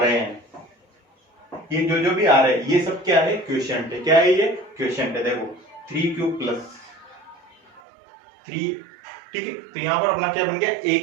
हैं, ये जो भी आ रहे हैं, ये सब क्या है क्वोशिएंट है, क्या है ये क्वोशिएंट है। देखो 3q प्लस 3, ठीक है। तो यहाँ पर अपना क्या बन गया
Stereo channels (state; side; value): drops out; left; at 7.8 s